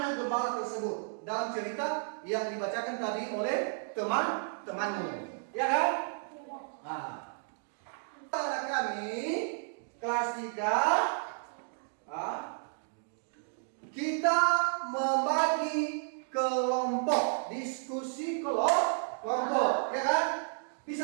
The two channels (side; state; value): left; silent; digital silence